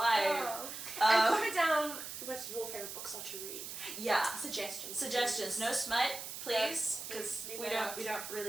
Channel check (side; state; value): right; noise; hiss, 8 dB below the sound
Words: Oh. And comment down what your favorite books are to read. Yeah. Suggestions. No smut, please, because we don't